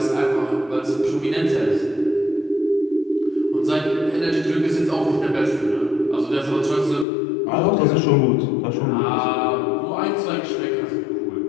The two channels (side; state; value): right; drops out; at 7.1 s